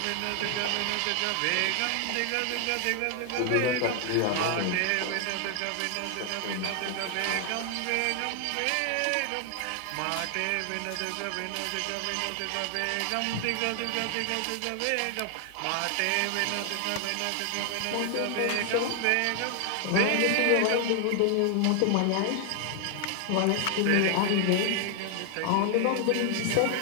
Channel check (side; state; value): both; different; correlation 0.00